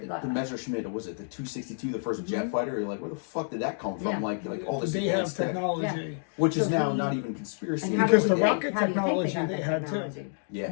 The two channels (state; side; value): silent; right; digital silence